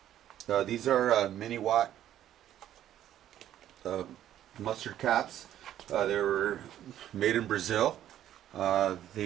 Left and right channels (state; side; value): quieter; left; 11.7 dB